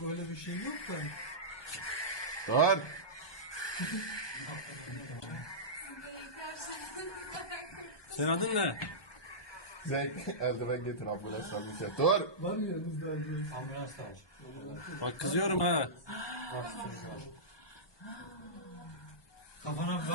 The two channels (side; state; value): right; late; 1.2 ms